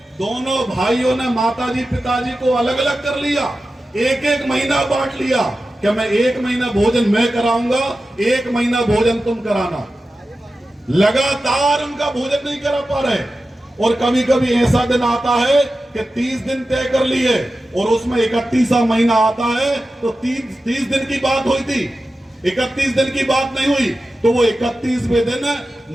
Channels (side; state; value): both; normal; correlation 0.93